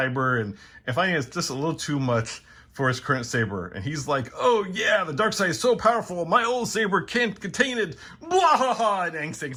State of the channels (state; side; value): identical; both; correlation 1.00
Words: and finding it's just a little too much for his current saber. And he's like, "Oh yeah, the dark side is so powerful, my old saber can't contain it." Blah, ha, ha, and